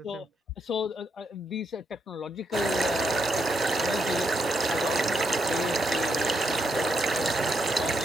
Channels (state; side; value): normal; both; correlation 0.79